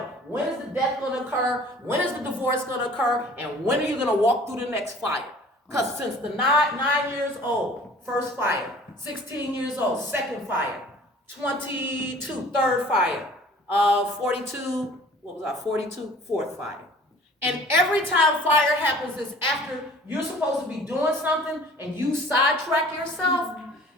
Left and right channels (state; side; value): normal; both; correlation 0.49